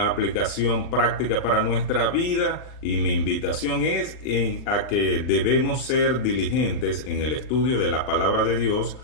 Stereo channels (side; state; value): right; late; 39 ms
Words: aplicación práctica para nuestra vida, y mi invitación es a que debemos ser diligentes en el estudio de la palabra de Dios,